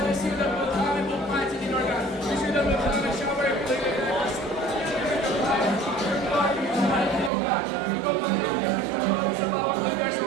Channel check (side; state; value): left; drops out; at 7.3 s